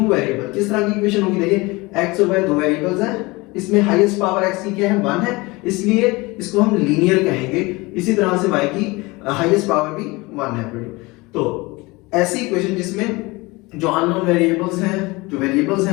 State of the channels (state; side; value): quieter; right; 23.4 dB